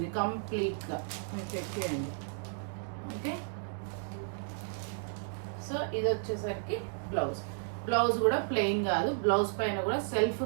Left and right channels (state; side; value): silent; left; digital silence